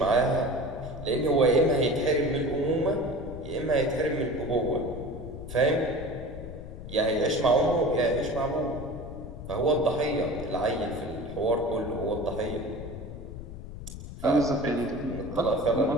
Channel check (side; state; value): left; noise; rumble, 11 dB below the sound